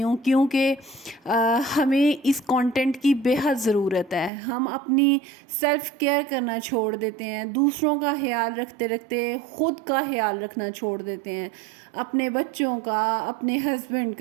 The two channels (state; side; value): drops out; left; at 4.3 s